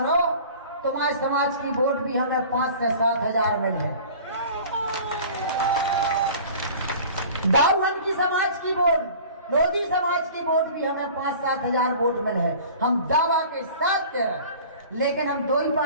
तुम्हारे समाज की वोट भी हमें 5 से 7,000 मिले। दाऊहन की समाज की वोट, लोधी समाज की वोट भी हमें 5-7,000 वोट मिले। हम दावा के साथ कह रहे, लेकिन हम दो ही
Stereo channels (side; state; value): both; inverted; correlation -0.43